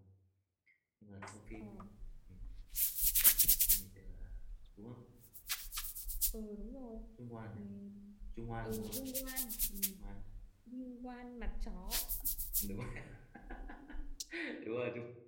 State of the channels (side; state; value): both; identical; correlation 1.00